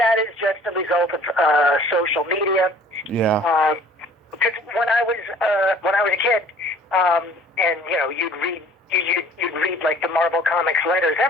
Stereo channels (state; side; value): normal; both; correlation 0.52